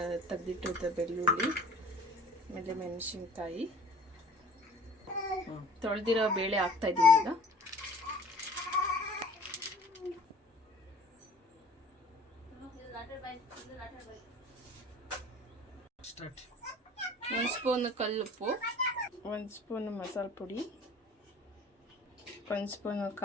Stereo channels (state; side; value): normal; both; correlation 0.48